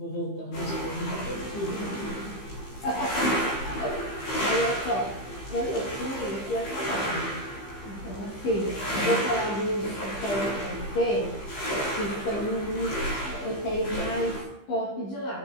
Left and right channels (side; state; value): right; late; 15 ms